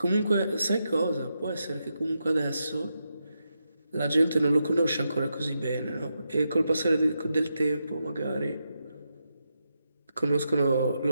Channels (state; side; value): inverted; both; correlation -0.85